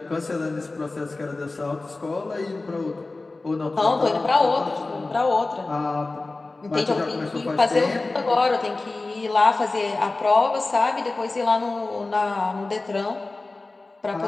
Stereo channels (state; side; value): quieter; right; 3.3 dB